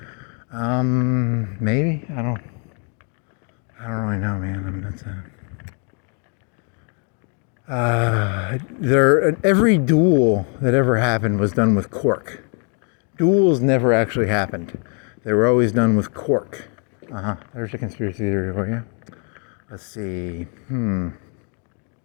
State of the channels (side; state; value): right; quieter; 39.9 dB